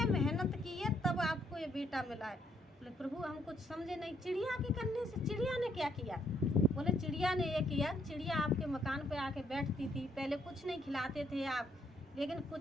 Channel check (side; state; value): both; normal; correlation 0.71